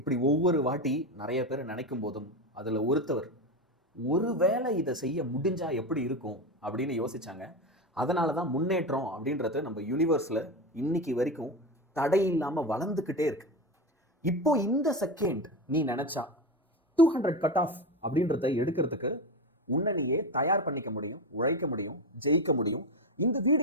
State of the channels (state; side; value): normal; both; correlation 0.18